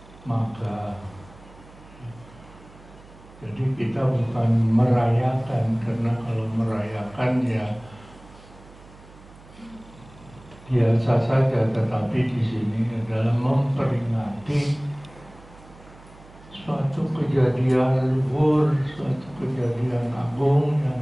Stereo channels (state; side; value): noise; right; hum, 22 dB below the sound